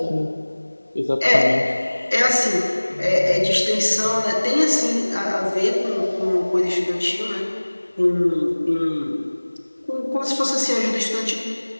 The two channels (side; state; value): both; inverted; correlation -1.00